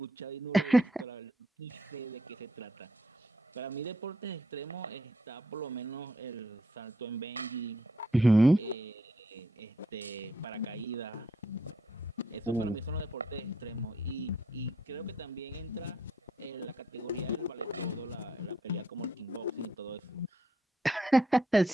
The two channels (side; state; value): both; normal; correlation 0.73